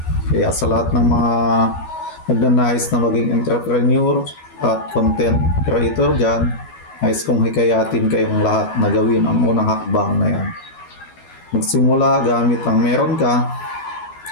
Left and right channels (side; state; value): right; late; 12 ms